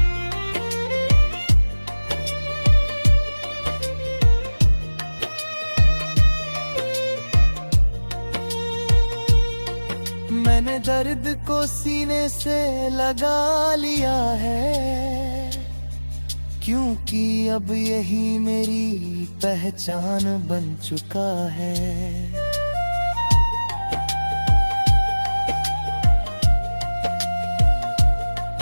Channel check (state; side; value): inverted; both; correlation -1.00